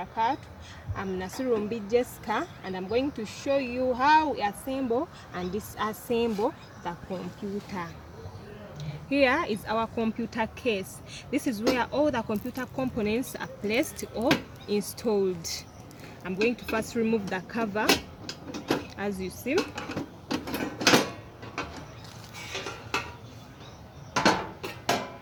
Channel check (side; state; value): both; identical; correlation 1.00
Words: I'm Nasirumbi Jesca, and I'm going to show you how we assemble and disassemble the computer. Here is our computer case. This is where all the computer components are placed or installed. I'm going to first remove the cover, as you see.